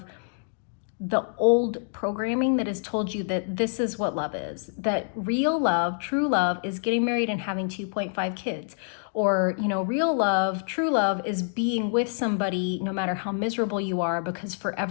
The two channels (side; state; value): right; silent; digital silence